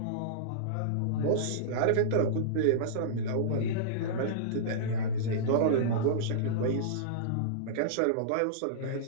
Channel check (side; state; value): both; different; correlation -0.04